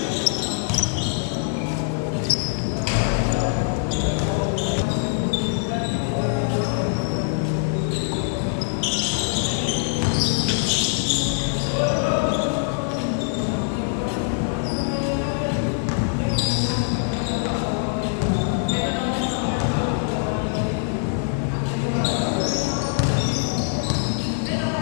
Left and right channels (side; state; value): right; silent; digital silence